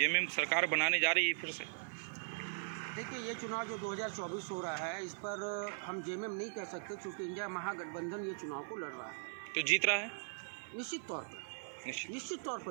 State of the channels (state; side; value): silent; left; digital silence